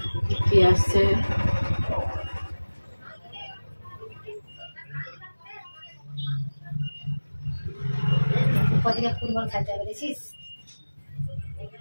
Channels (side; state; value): both; inverted; correlation -1.00